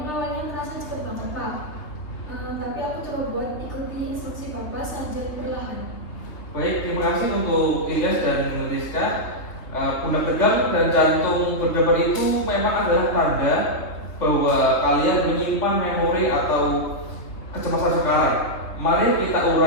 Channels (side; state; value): right; late; 3.3 ms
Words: awalnya merasa cepet banget Pak. Tapi aku coba buat ikuti instruksi Bapak saja perlahan. Baik, terima kasih untuk Ilyas dan Rizka. Pundak tegang dan jantung berdebar itu memang adalah tanda bahwa kalian menyimpan memori atau kecemasan sekarang. Mari kita